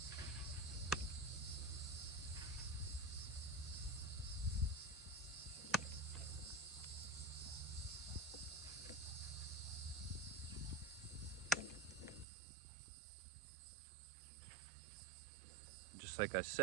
Just like I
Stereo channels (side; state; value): left; drops out; at 12.2 s